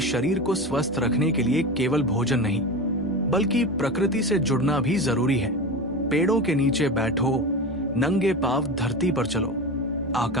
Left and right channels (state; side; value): normal; both; correlation 0.25